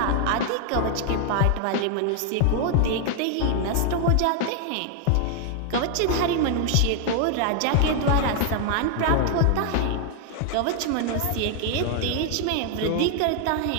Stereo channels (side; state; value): both; different; correlation 0.00